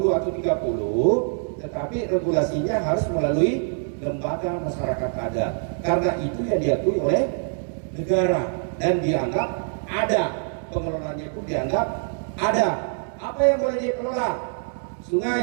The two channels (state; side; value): silent; left; 62 dB below the other